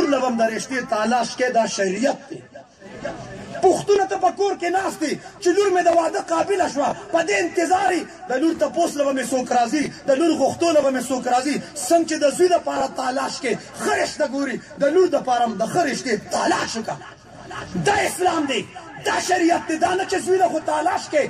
له به هم د رشتې تالاش کې دا شریعت دی پښتونه ته په کور کې ناست دی چې لور مې د واده قابله شوه په دې انتظار د لور تپوس له به مې څوک راځي د لور غوښتو له به مې څوک راځي څنګه چې د زوی دپاره تالاش کې ښه رشته ګوري د لور دپاره هم د ښه رشتې تالاش وکړه دا اسلام دی دا شریعت دی دا نه چې زوی له خو تالاش کې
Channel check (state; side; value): identical; both; correlation 1.00